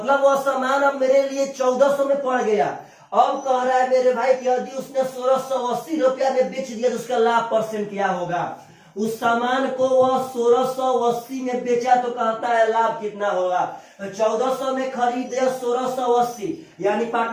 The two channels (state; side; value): identical; both; correlation 1.00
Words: वह सामान अब मेरे लिए 1400 में पड़ गया। अब कह रहा है मेरे भाई कि यदि उसने 1680 रुपया में बेच दिया तो उसका लाभ परसेंट क्या होगा। उस सामान को वह 1680 में बेचा तो कहता है लाभ कितना होगा। 1400 में खरीदे 1680, यानी